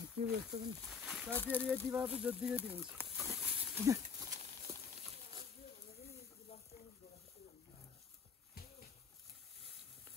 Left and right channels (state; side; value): quieter; right; 6.0 dB